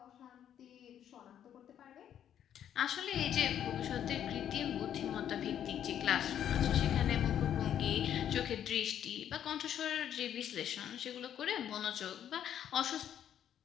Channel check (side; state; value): right; quieter; 10.0 dB